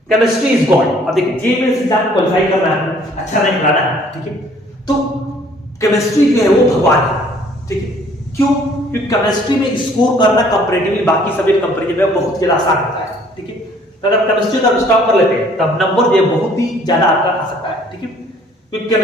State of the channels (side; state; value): both; normal; correlation 0.58